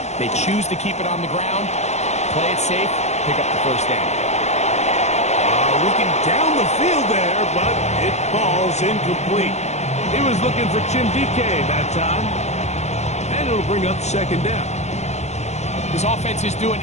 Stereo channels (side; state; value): right; late; 0.33 ms